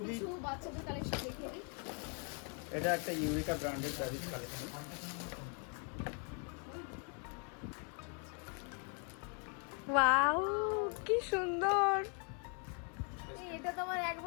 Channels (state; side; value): quieter; right; 39.3 dB